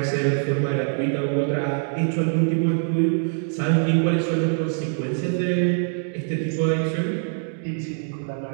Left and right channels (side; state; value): left; silent; 63 dB below the other